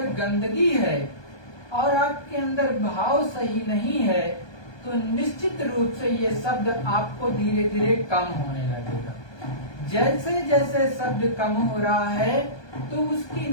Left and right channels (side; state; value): right; late; 1.2 ms